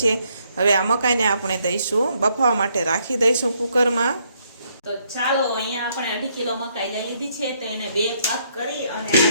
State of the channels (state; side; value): inverted; both; correlation -0.72